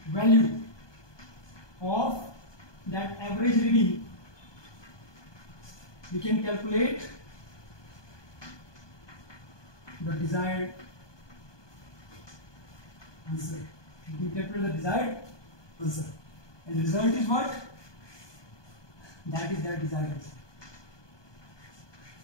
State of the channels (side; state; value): right; late; 1.2 ms